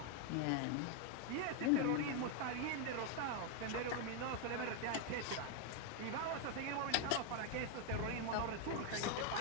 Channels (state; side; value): different; both; correlation 0.01